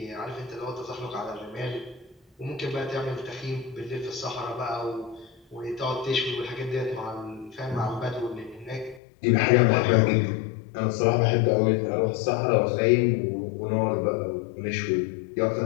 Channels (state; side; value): drops out; right; at 9.0 s